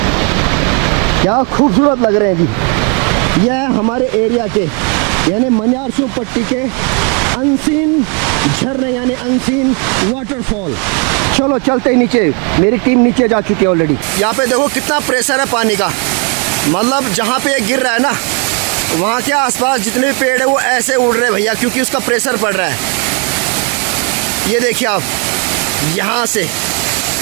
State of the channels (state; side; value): quieter; left; 36.7 dB